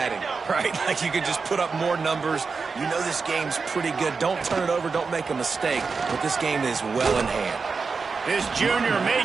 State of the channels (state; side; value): quieter; left; 4.8 dB